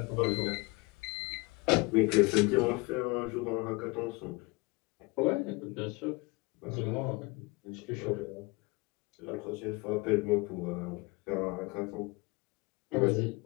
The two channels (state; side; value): quieter; right; 25.8 dB